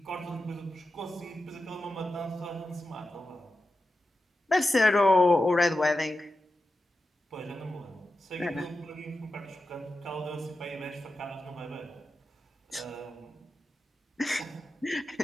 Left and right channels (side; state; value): both; normal; correlation 0.91